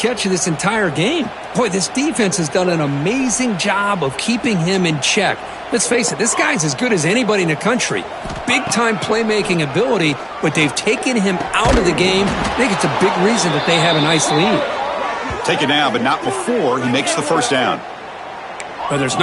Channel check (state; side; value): identical; both; correlation 1.00